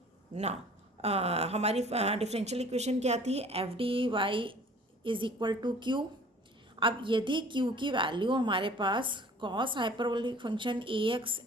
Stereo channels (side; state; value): both; normal; correlation 0.49